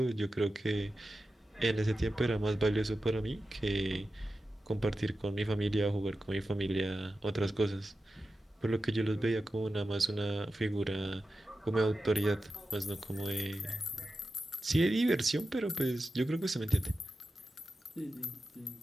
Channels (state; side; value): normal; both; correlation 0.92